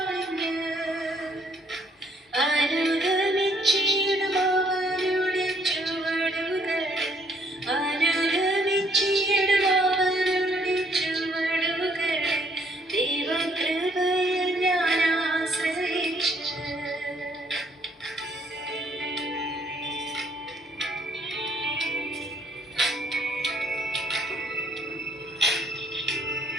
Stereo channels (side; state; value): both; normal; correlation 0.66